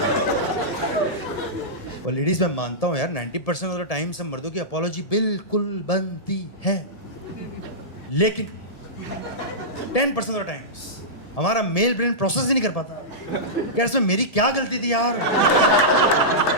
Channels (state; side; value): late; right; 1.7 ms